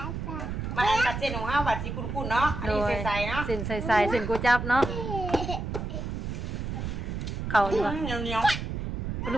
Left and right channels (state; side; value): noise; right; rumble, 4 dB below the sound